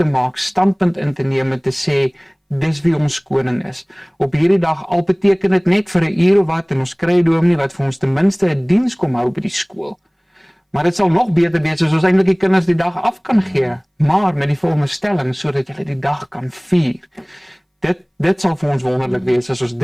maak, standpunt in te neem en te sê dis wie ons koning is. Op hierdie dag al beteken dit net vir 'n uur of wat en ons kry 'n dominee wat vir ons ten minste 'n diens kom hou by die skool. Maar dit sal nog beter wees as ons eintlik die kinders die dag af kan gee, maar met die volgende stelling sodat hulle die dag kan vier. Dit sal vir ons wonderlik wees as ons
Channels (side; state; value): both; identical; correlation 1.00